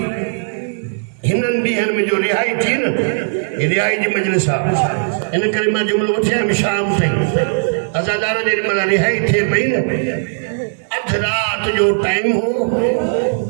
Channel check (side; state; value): left; silent; 68 dB below the other